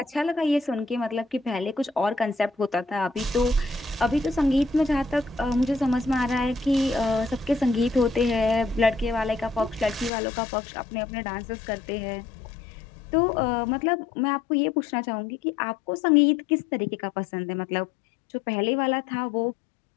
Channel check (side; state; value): right; drops out; at 10.1 s